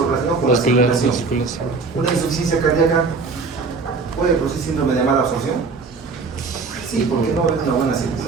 relacionado con la circulación. Una insuficiencia cardíaca puede producir síndrome de mala absorción. Sí, porque no va a haber una buena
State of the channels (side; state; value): left; quieter; 4.5 dB